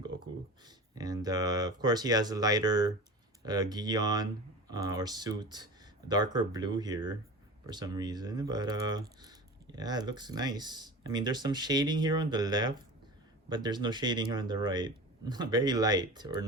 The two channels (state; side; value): normal; both; correlation 0.33